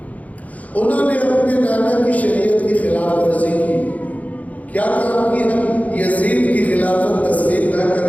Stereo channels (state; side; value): late; right; 0.072 ms